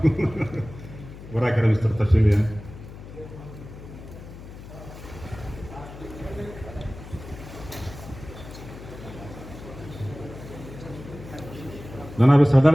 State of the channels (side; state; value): left; noise; hum, 14 dB below the sound